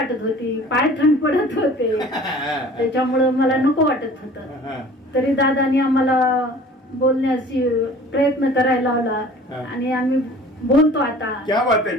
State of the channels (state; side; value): normal; both; correlation 0.47